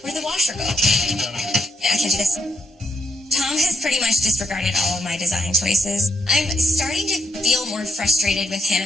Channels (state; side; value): normal; both; correlation 0.78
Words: Where'd the washer go? Yeah, I can do this. Tom has pretty much disregarded all of my design choices. I'm starting to feel more frustrated with